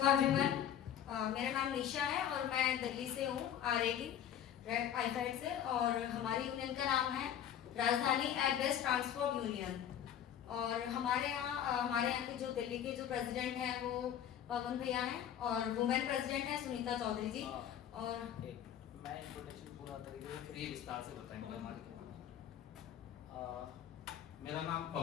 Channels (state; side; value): quieter; right; 9.9 dB